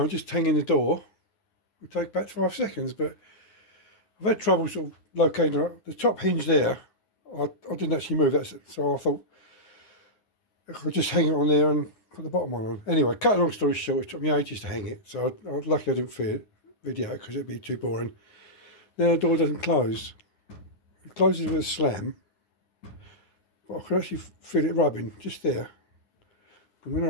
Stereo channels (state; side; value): late; right; 9.6 ms